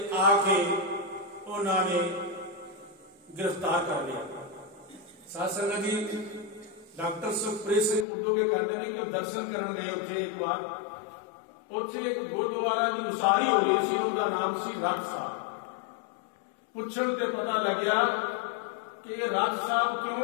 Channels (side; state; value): right; drops out; at 8.1 s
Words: आके उन्होंने गिरफ्तार कर लिया। साध संगत जी डॉक्टर सुखप्रीत सिंह उर्दू के कहते हैं कि दर्शन करने गए उत्थे एक बार, उत्थे एक गुरुद्वारा की उसारी हो रही सी, उसका नाम सी रथ साहब। पुछण ते पता लग्या कि ये रथ साहब